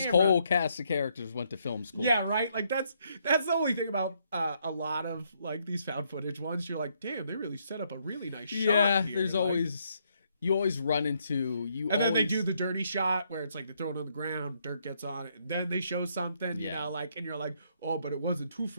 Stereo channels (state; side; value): inverted; both; correlation -0.73